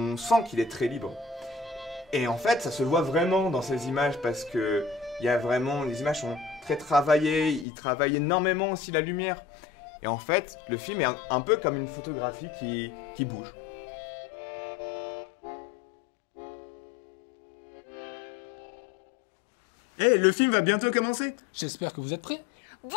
sent qu'il est très libre. Et en fait, ça se voit vraiment dans ces images, parce que il y a vraiment, les images sont très travaillées, il travaille énormément aussi la lumière. Et en fait, le film est un peu comme une photographie qui bouge. Le film va bientôt commencer. J'espère que vous êtes prêts. Bon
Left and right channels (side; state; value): right; drops out; at 7.7 s